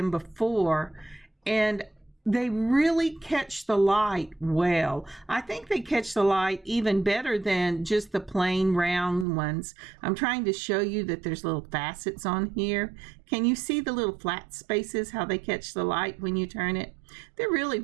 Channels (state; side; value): drops out; left; at 9.2 s